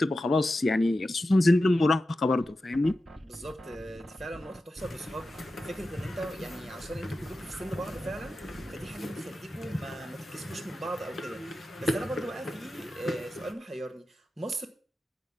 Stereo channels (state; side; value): normal; both; correlation 0.92